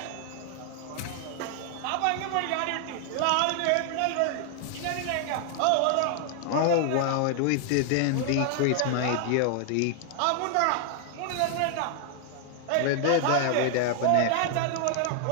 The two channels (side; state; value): both; different; correlation 0.00